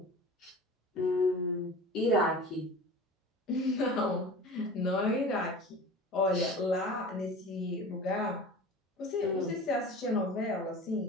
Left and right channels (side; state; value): both; normal; correlation 0.37